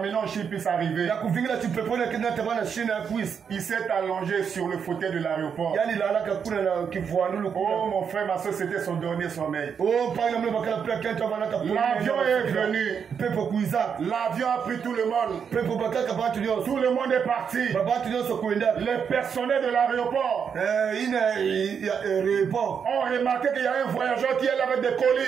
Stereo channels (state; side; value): quieter; left; 7.0 dB